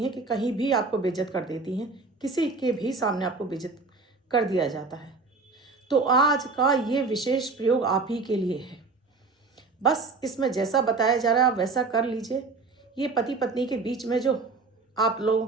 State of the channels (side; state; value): left; quieter; 4.0 dB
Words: हैं कि कहीं भी आपको बेइज्जत कर देती हैं, किसी के भी सामने आपको बेइज्जत कर दिया जाता है। तो आज का ये विशेष प्रयोग आप ही के लिए है। बस इसमें जैसा बताया जा रहा है आप वैसा कर लीजिए। ये पति पत्नी के बीच में जो आप लोगों